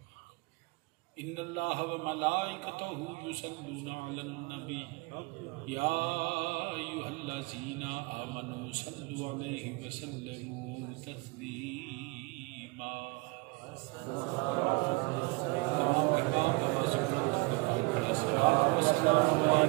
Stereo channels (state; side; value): quieter; left; 27.4 dB